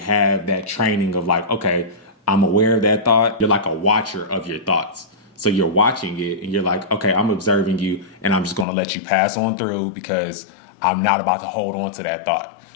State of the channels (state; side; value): drops out; right; at 8.7 s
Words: that training of like, okay, I'm aware of that thought. You're like a watcher of your thoughts. So you're watching it and you're like, okay, I'm observing you and I'm just going to let you pass on through because I'm not about to hold on to that thought.